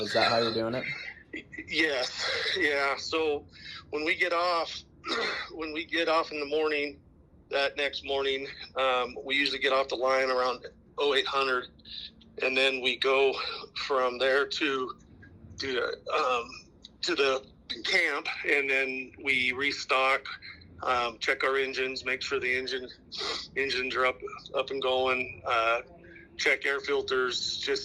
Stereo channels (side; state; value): both; identical; correlation 1.00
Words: that how you're doing it? Yes. Yeah. So when we get off in the morning, that next morning, we usually get off the line around 0800, and then we go from there to the camp, and then we restock, check our engines, make sure the engines are up and going, check air filters,